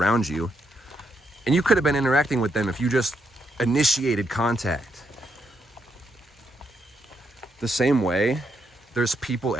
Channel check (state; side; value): normal; both; correlation 0.78